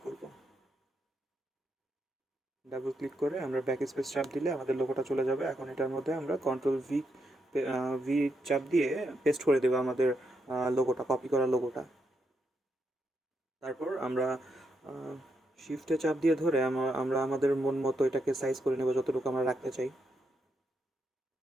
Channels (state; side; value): normal; both; correlation 0.80